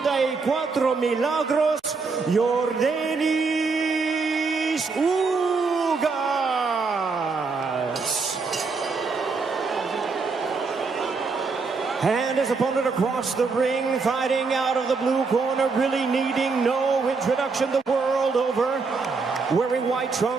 Milagros, Yurdenis Ugas. And his opponent across the ring, fighting out of the blue corner, really needing no introduction the world over, wearing white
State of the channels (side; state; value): left; quieter; 4.5 dB